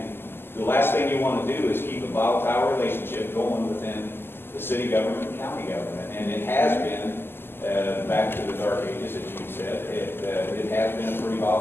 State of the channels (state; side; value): late; right; 0.11 ms